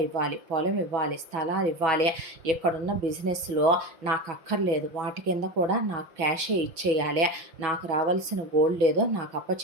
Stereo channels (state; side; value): late; left; 5.8 ms